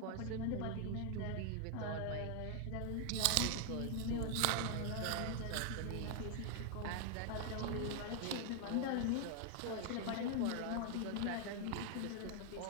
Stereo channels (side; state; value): both; different; correlation 0.00